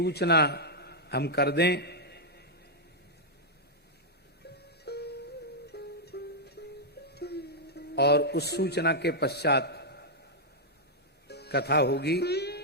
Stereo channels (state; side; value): normal; both; correlation -0.05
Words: हम कर दें। और उस सूचना के पश्चात कथा होगी।